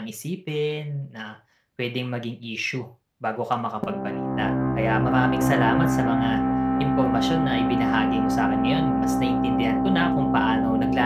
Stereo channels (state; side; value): identical; both; correlation 1.00